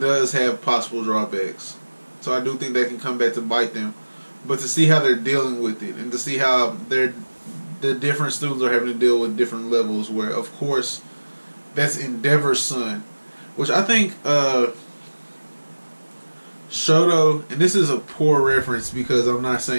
have possible drawbacks. So I do think that can come back to bite them. But to see how they're dealing with it, and to see how the different students are having to deal with different levels, where, of course, that's Endeavor's son, which I think Shoto, and this is a poor reference because I'm not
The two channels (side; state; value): both; inverted; correlation -1.00